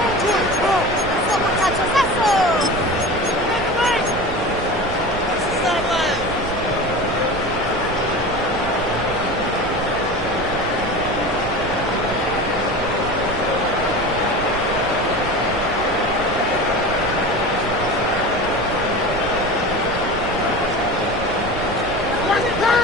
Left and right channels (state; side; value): noise; right; rumble, 13 dB below the sound